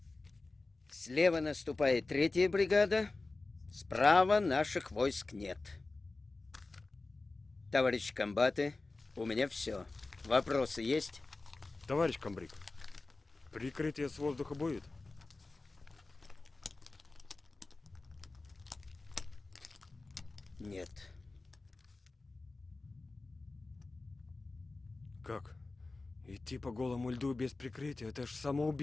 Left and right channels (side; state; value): right; quieter; 3.4 dB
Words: Слева наступает 3-я бригада, справа наших войск нет. Товарищи комбаты, у меня все. Вопросы есть? Товарищ комбриг, прикрытие с воздуха будет? Нет. Как? Идти по голому льду без прикрытия — это ж